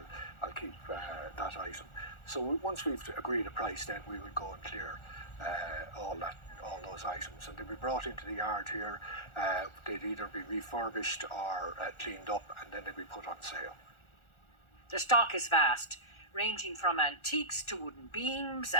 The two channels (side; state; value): right; late; 1.4 ms